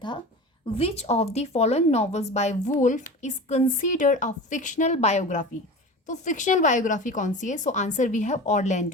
which of the following novels by Woolf is considered a fictional biography. तो fictional biography कौन सी है? So answer we have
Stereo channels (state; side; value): normal; both; correlation 0.32